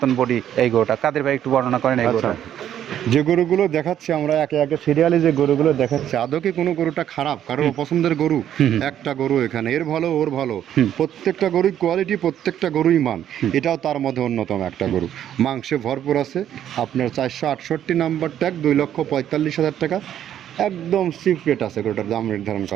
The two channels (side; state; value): left; quieter; 10.5 dB